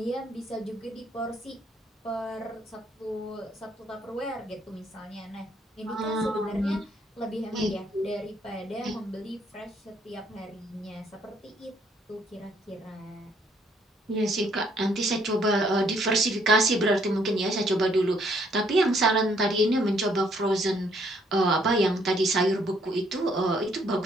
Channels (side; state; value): both; normal; correlation 0.67